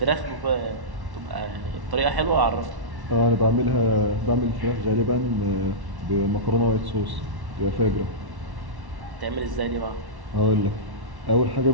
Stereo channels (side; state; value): left; late; 1.1 ms